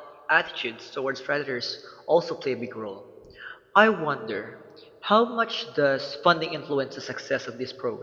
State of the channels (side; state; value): both; identical; correlation 1.00